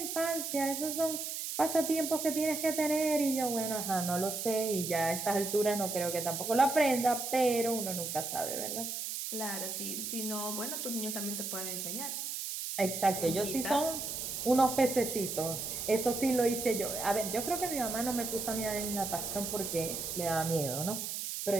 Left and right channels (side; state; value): right; noise; hiss, 4 dB below the sound